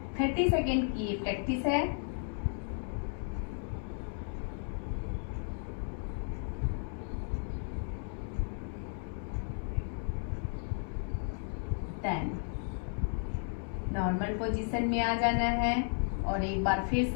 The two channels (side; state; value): right; silent; 55 dB below the other